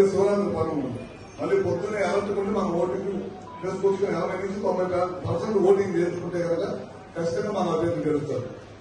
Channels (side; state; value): both; identical; correlation 1.00